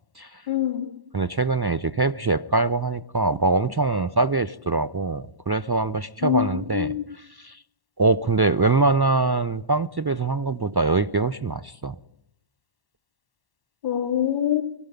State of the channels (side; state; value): left; late; 1.1 ms